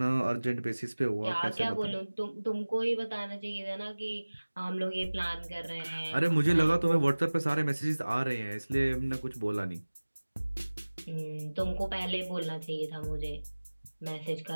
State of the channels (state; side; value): inverted; both; correlation -1.00